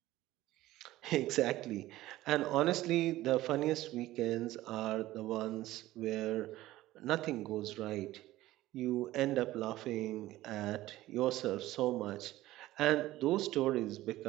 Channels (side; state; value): left; quieter; 16.1 dB